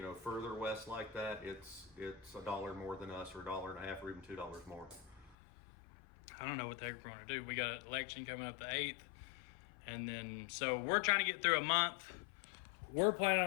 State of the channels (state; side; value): drops out; right; at 5.4 s